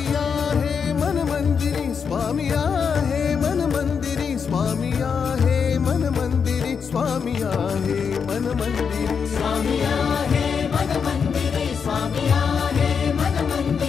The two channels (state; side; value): quieter; right; 6.3 dB